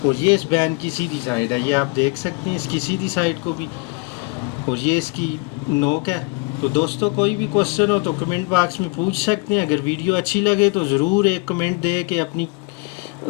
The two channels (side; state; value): right; quieter; 29.3 dB